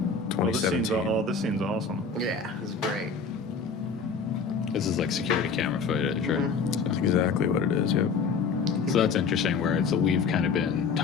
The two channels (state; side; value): quieter; right; 5.1 dB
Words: Oh, this scene's 2017. this scene's awesome. Yeah, this is great. This is like security camera footage, right? That's exactly what it is. Yep. So that's interesting. Where it's we've kind of been